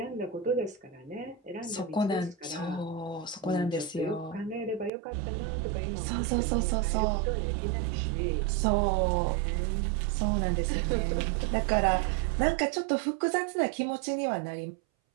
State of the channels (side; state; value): left; drops out; at 4.9 s